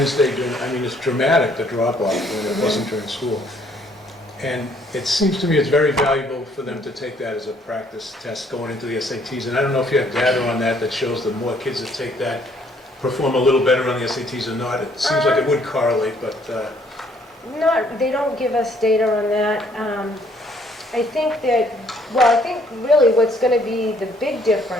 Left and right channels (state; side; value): normal; both; correlation 0.64